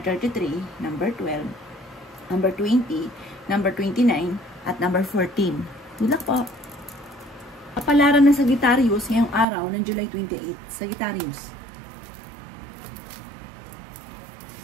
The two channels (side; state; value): left; drops out; at 9.5 s